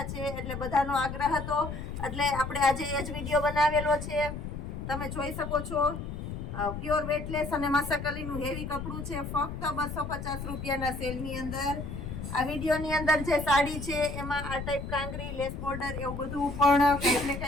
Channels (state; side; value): noise; left; rumble, 7 dB below the sound